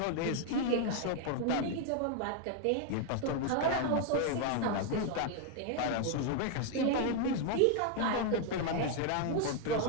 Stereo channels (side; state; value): both; different; correlation 0.00